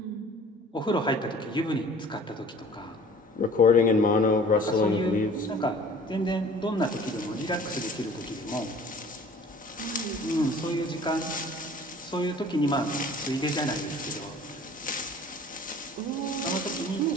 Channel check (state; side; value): normal; both; correlation 0.48